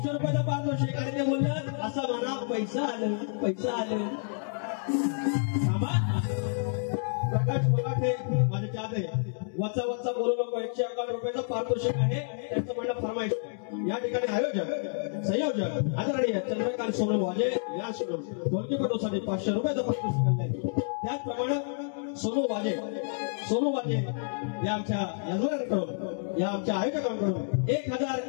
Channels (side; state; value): right; silent; digital silence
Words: रुपयाचा पारितोषिक आणि ते बोललं असं म्हणा पैसा आलं प्रकाश मराठे माझे चाहते वचा बोलू नको 111 रुपयाचं पारितोषिक आहे त्यांचं म्हणणं फरमाईश या ठिकाणी आयोजक संयोजक आदरणीय चंद्रकांत सोनवाजे या ढोलकीपटूसाठी 500 रुपयाचं पारितोषिक आणलंय त्याचप्रमाणे सोनू वाजे या आमच्या यजमानांकडून या आमच्या आयोजकांकडून